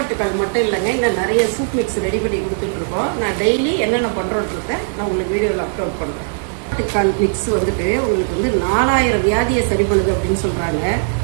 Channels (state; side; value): silent; left; 61 dB below the other